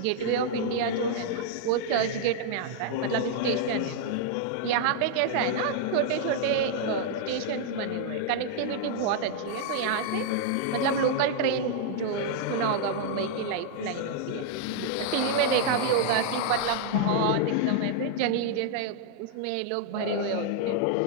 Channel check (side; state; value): both; different; correlation -0.01